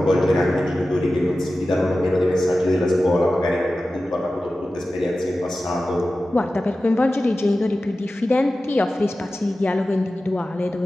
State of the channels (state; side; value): normal; both; correlation 0.95